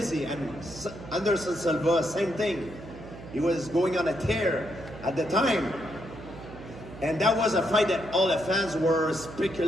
and Anderson Silva, same thing. He was going on a tear at the time. And that was a fight that all the fans were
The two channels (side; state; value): right; noise; hum, 15 dB below the sound